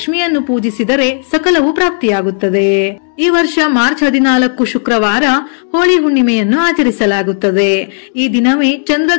ಪೂಜಿಸಿದರೆ ಸಕಲವೂ ಪ್ರಾಪ್ತಿಯಾಗುತ್ತದೆ. ಈ ವರ್ಷ ಮಾರ್ಚ್ 14 ಶುಕ್ರವಾರ ಹೋಳಿ ಹುಣ್ಣಿಮೆಯನ್ನು ಆಚರಿಸಲಾಗುತ್ತದೆ. ಈ ದಿನವೇ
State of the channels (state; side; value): silent; right; digital silence